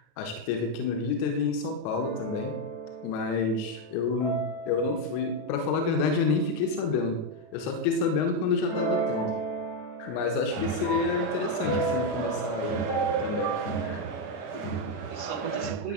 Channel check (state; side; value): late; right; 33 ms